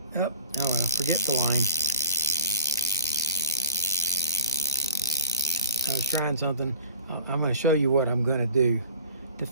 Oh, no, forget the line. I was trying something. I'm going to show you what I'm going to do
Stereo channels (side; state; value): both; inverted; correlation -0.45